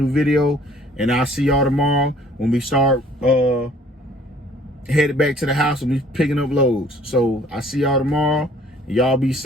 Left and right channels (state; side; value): normal; both; correlation 0.56